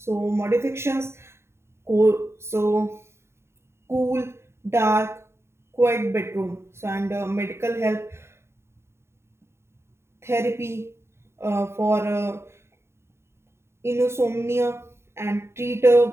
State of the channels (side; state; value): left; late; 0.13 ms